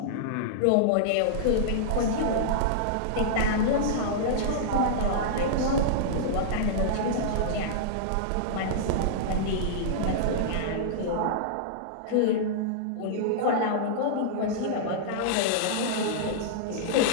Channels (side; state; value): both; different; correlation -0.02